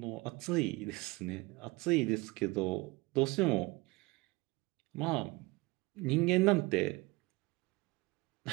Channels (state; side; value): quieter; left; 23.5 dB